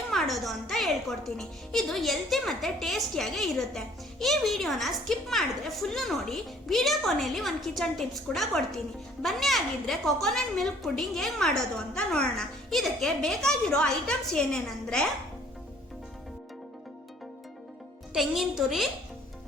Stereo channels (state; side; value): normal; both; correlation 0.57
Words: ಮಾಡೋದು ಅಂತ ಹೇಳ್ಕೊಡ್ತೀನಿ. ಇದು ಹೆಲ್ತಿ ಮತ್ತೆ ಟೇಸ್ಟಿಯಾಗಿ ಇರುತ್ತೆ. ಈ ವಿಡಿಯೋನ ಸ್ಕಿಪ್ ಮಾಡಿದ್ರೆ ಫುಲ್ಲು ನೋಡಿ. ವಿಡಿಯೋ ಕೊನೆಯಲ್ಲಿ ಒಂದು ಕಿಚನ್ ಟಿಪ್ಸ್ ಕೂಡ ಕೊಡ್ತೀನಿ. ಬನ್ನಿ ಆಗಿದ್ರೆ ಕೊಕೊನಟ್ ಮಿಲ್ಕ್ ಪುಡ್ಡಿಂಗ್ ಹೇಗೆ ಮಾಡೋದು ಅಂತ ನೋಡೋಣ. ಇದಕ್ಕೆ ಬೇಕಾಗಿರೋ ಐಟಮ್ಸ್ ಏನೇನಂದ್ರೆ ತೆಂಗಿನ ತುರಿ,